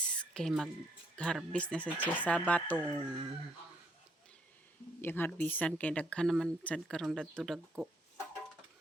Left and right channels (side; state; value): both; normal; correlation 0.70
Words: kay mag-harvest na sa siya sa batong. Yung harbisan kay daghan naman sad karon dadto dagko.